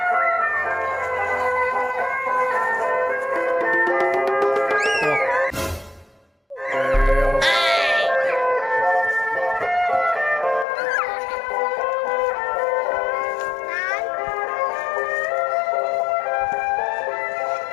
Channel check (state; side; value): drops out; right; at 10.7 s